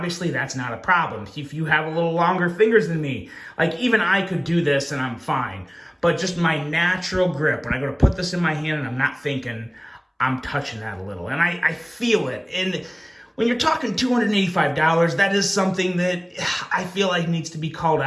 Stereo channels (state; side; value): identical; both; correlation 1.00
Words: that's not a problem. If you have a little longer fingers than me, like even I could do this and I'm fine. But just my natural grip, when I go to put this in my hand and I'm not thinking, I'm touching that a little. And I feel it. And when you're talking $285, that is something that I feel like needs to be called